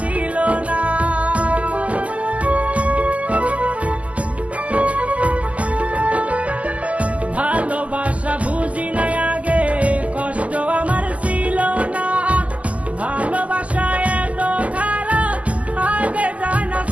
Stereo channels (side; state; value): left; late; 0.070 ms